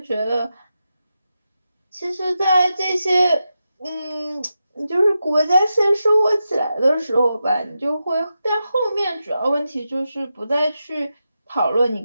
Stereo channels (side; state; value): both; inverted; correlation -0.89